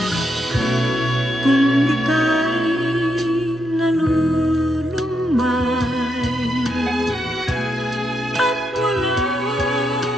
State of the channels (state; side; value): normal; both; correlation 0.81